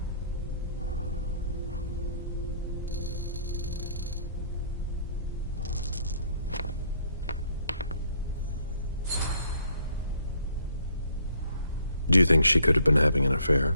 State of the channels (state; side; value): inverted; both; correlation -0.64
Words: Do you think she could have been having an affair?